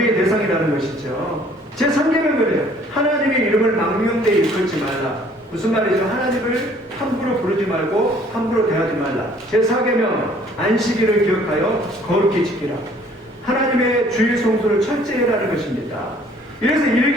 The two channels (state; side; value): normal; both; correlation 0.57